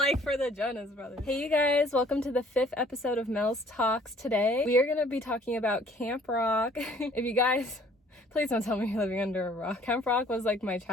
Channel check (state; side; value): normal; both; correlation 0.57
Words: for the Jonas Brothers. Hey, you guys, welcome to the 5th episode of Mels Talks. Today, we are going to be talking about Camp Rock. If you guys... Please don't tell me you're living under a rock. Camp Rock was like my